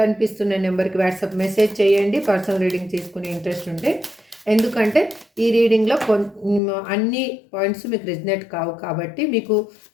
కనిపిస్తున్న నెంబర్కి వాట్సాప్ మెసేజ్ చేయండి. పర్సనల్ రీడింగ్ తీసుకునే ఇంట్రెస్ట్ ఉంటే, ఎందుకంటే ఈ రీడింగ్లో అన్ని పాయింట్స్ మీకు రిజనేట్ కావు కాబట్టి, మీకు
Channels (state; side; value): drops out; right; at 6.6 s